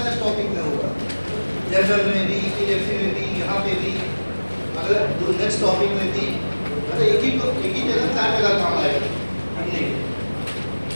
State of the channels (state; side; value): inverted; both; correlation -1.00